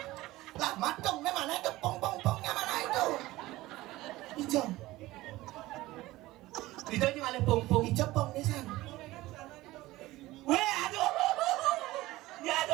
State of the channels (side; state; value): left; quieter; 18.0 dB